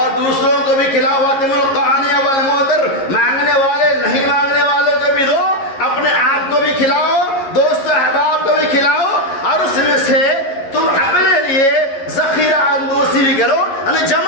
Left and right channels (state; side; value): late; right; 11 ms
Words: دوسروں کو بھی کھلاؤ واتم القانی والمعتر مانگنے والے نہیں مانگنے والے کو بھی دو اپنے آپ کو بھی کھلاؤ دوست احباب کو بھی کھلاؤ اور اس میں سے تم اپنے لیے ذخیرہ اندوزی بھی کرو یعنی